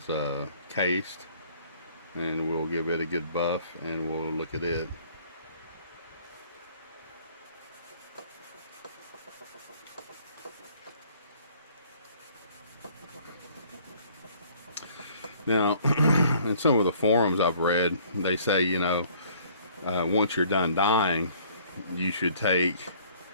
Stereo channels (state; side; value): inverted; both; correlation -0.57